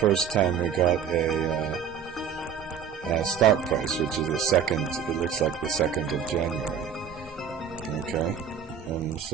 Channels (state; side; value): quieter; left; 7.6 dB